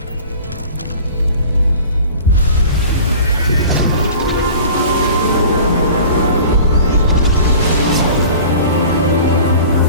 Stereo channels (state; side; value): inverted; both; correlation -0.42